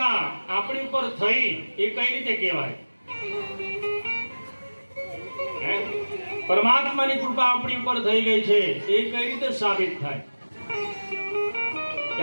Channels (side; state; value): both; inverted; correlation -1.00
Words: આપણી ઉપર થઈ એ કઈ રીતે કહેવાય? પરમાત્માની કૃપા આપણી ઉપર થઈ ગઈ છે એ કઈ રીતે સાબિત થાય કે